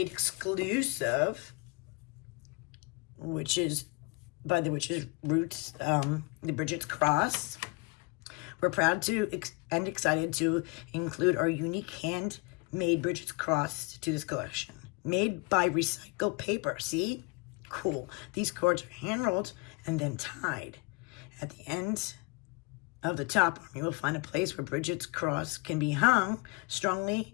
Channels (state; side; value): quieter; right; 28.3 dB